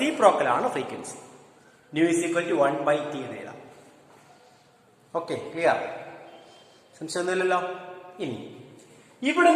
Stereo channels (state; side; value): identical; both; correlation 1.00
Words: ആണ് frequency. Nu is equal to 1 by T എന്ന് എഴുതാം. Okay, clear? സംശയമൊന്നുമില്ലല്ലോ. ഇനി